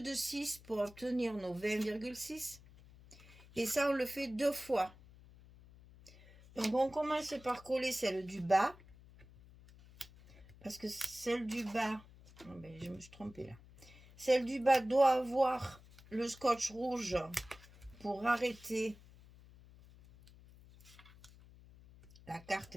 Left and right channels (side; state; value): left; noise; hum, 22 dB below the sound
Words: pour obtenir nos 20,6. Et ça, on le fait deux fois. Donc, on commence par coller celle du bas. Parce que celle du bas... Oh ben, je me suis trompée là. Celle du bas doit avoir le scotch rouge pour arrêter la